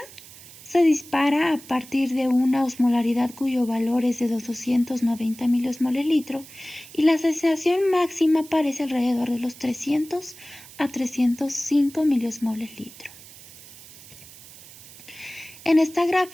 se dispara a partir de una osmolaridad cuyo valor es de 290 miliosmoles litro y la sensación máxima aparece alrededor de los 300 a 305 miliosmoles litro. En esta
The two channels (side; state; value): right; noise; hiss, 19 dB below the sound